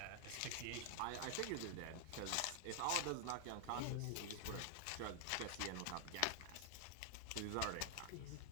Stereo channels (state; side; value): different; both; correlation 0.00